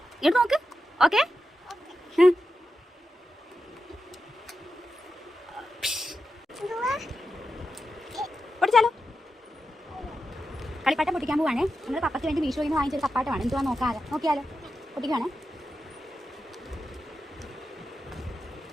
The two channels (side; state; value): both; normal; correlation 0.89